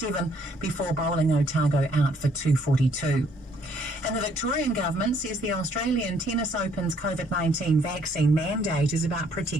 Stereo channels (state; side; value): normal; both; correlation 0.65